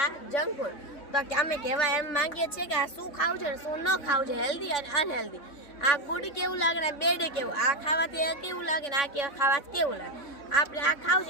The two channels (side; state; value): right; late; 3.6 ms